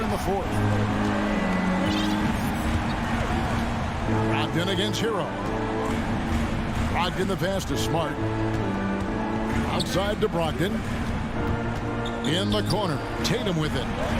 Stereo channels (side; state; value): both; identical; correlation 1.00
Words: in the fourth. Brogdon against Hero. Brogdon the pass to Smart. Outside to Brogdon. In the corner. Tatum with it.